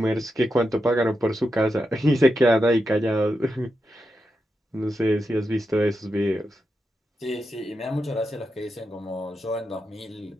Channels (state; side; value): normal; both; correlation 0.87